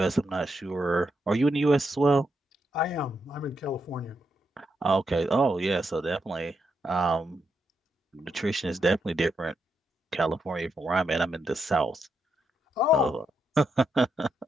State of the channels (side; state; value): both; normal; correlation 0.82